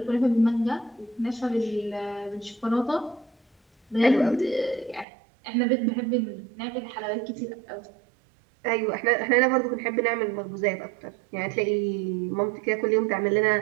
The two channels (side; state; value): left; drops out; at 5.1 s